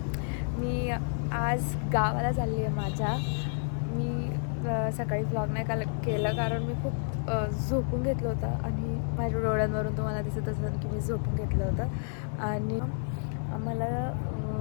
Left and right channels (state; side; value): silent; right; digital silence